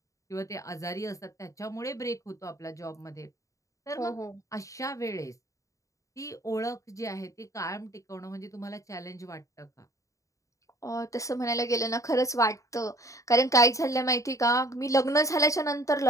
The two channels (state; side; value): late; right; 0.16 ms